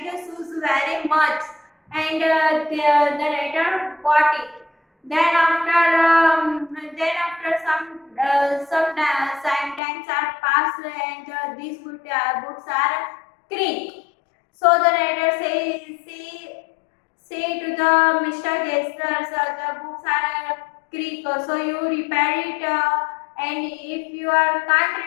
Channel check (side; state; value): right; drops out; at 9.8 s